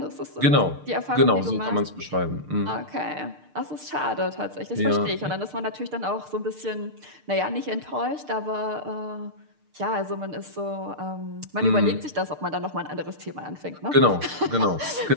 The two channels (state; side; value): late; left; 6.6 ms